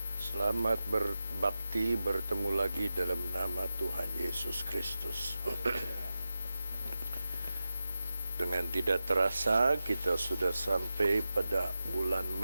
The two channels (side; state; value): both; inverted; correlation -0.91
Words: selamat berbakti bertemu lagi dalam nama Tuhan Yesus Kristus. Dengan tidak terasa kita sudah sampai pada bulan